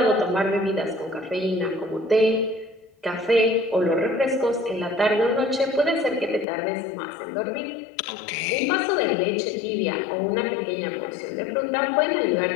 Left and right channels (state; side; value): drops out; right; at 6.5 s